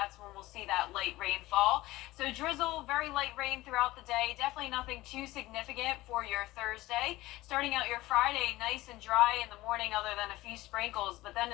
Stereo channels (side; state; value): right; quieter; 18.1 dB